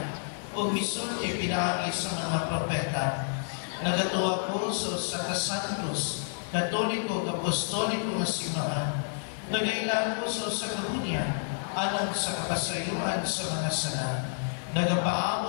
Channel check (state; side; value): silent; right; digital silence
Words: o misulti pinaki sa mga propeta. Nagatuwa ko sa kasantos, katoliko, apostoliko nga simbahan. Nagailan ko sa kahunya, alang sa kapasayuan sa mga sala.